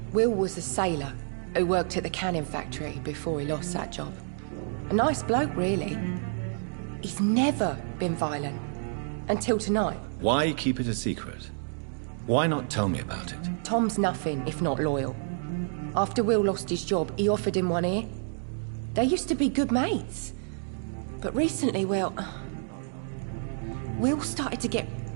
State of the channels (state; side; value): silent; left; digital silence